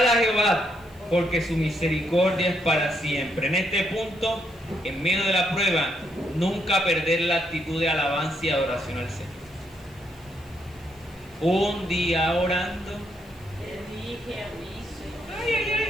a Jehová, porque su misericordia es para siempre. En este punto, en medio de la prueba, nunca perder la actitud de alabanza y adoración al Señor. Un día orando,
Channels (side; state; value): left; noise; hiss, 28 dB below the sound